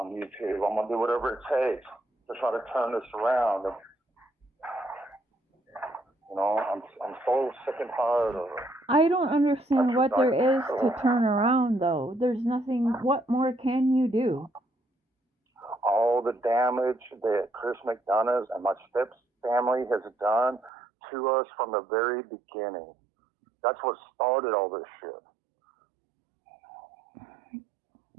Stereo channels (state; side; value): drops out; left; at 20.7 s